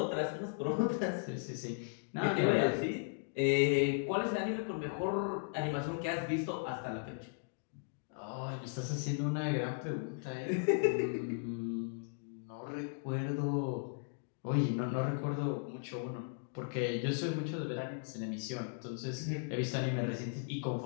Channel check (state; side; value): silent; right; digital silence